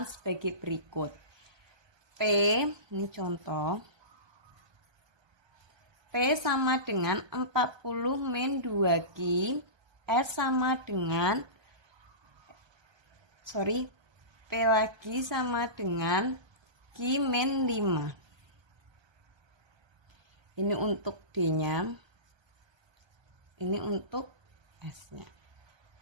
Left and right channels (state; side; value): late; left; 1.2 ms